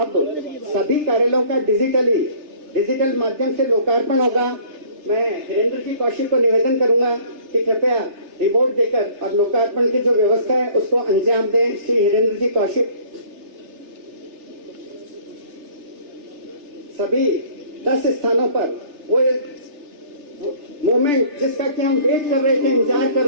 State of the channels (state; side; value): late; left; 3.3 ms